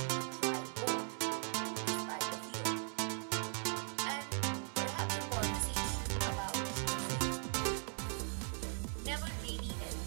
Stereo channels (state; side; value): silent; left; 52 dB below the other